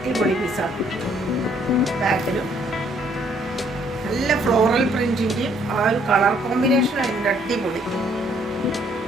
പീസാണ്. ബാക്കിലും നല്ല ഫ്ലോറൽ പ്രിന്റിൻ്റെയും ആ ഒരു കളർ കോമ്പിനേഷൻ അതിൻ്റെ അടിപൊളി.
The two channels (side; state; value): both; normal; correlation 0.65